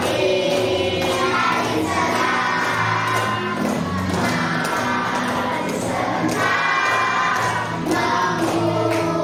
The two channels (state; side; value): identical; both; correlation 1.00